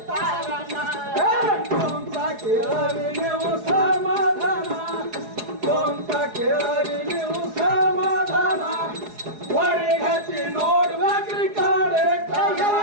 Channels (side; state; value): left; late; 4.8 ms